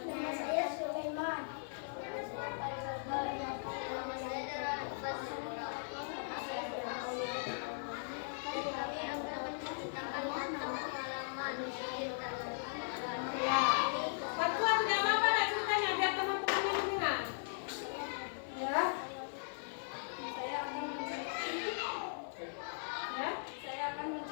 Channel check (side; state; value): right; silent; 52 dB below the other